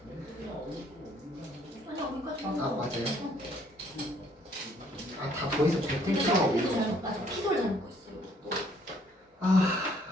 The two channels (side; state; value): both; normal; correlation 0.63